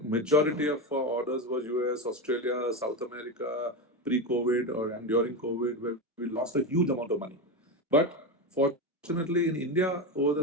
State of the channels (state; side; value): normal; both; correlation 0.15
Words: majority of our orders was US, Australia, South America, pre-COVID or and during COVID, where we lost a huge amount of money. But fortunately, in India, over